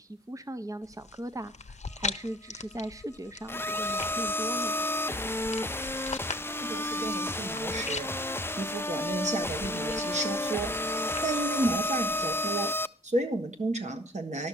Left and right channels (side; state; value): both; normal; correlation 0.51